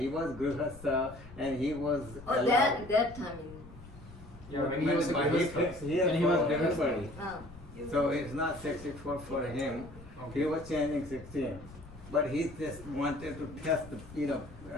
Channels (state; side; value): noise; left; rumble, 18 dB below the sound